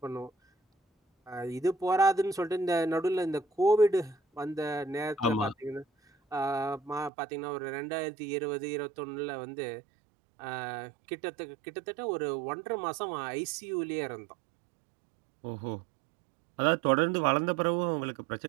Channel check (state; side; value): drops out; left; at 7.1 s